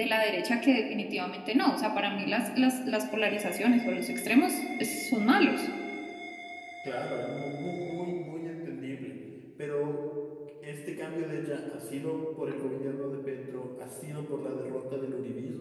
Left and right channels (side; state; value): both; identical; correlation 1.00